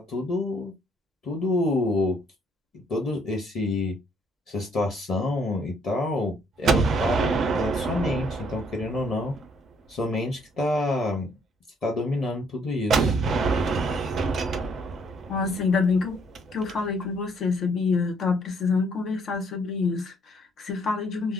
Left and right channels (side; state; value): both; normal; correlation 0.66